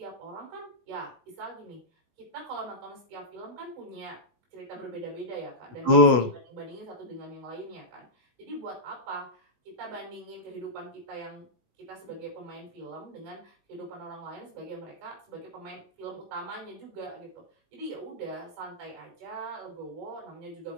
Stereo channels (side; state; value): left; late; 20 ms